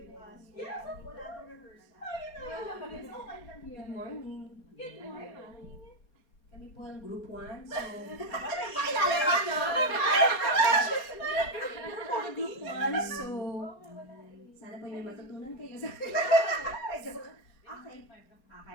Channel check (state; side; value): late; right; 4.1 ms